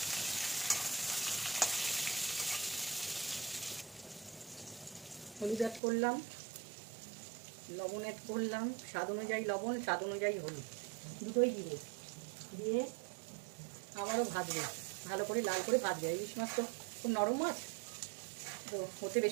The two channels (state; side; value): drops out; left; at 5.8 s